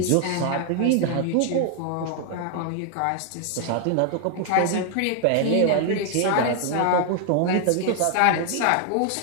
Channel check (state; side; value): different; both; correlation 0.00